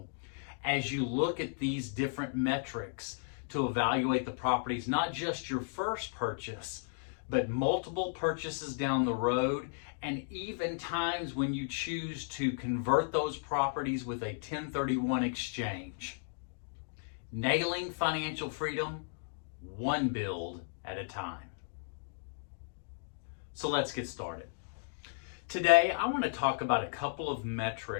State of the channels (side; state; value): right; silent; digital silence